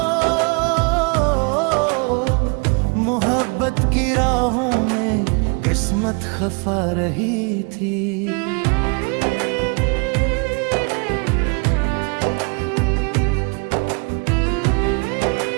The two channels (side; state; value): left; quieter; 34.6 dB